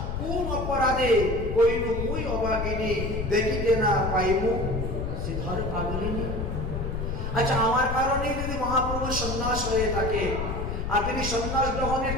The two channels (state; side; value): noise; left; rumble, 4 dB below the sound